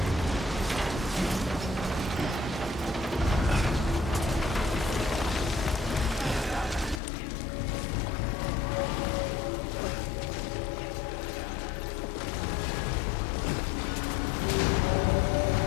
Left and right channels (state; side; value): drops out; right; at 7.0 s